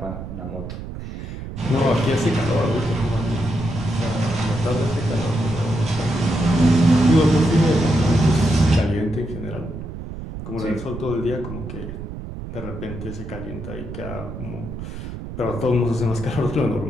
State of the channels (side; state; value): right; noise; rumble, 9 dB below the sound